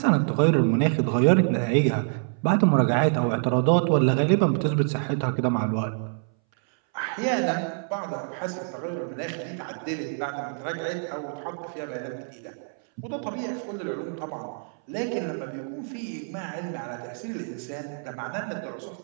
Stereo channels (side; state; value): left; silent; 61 dB below the other